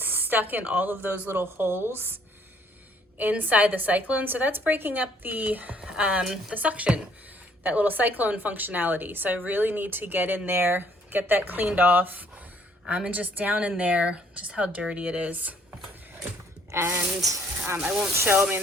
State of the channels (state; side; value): normal; both; correlation 0.63